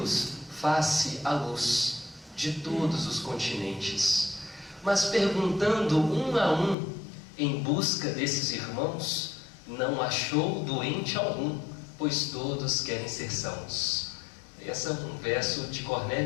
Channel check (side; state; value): right; drops out; at 6.8 s